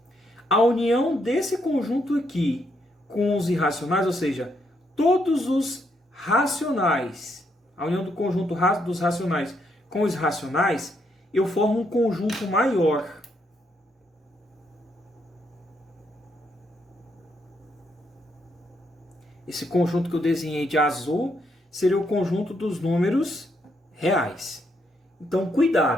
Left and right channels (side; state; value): both; normal; correlation 0.76